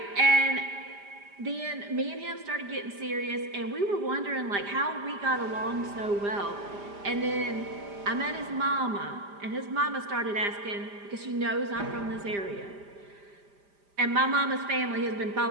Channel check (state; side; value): late; left; 5.0 ms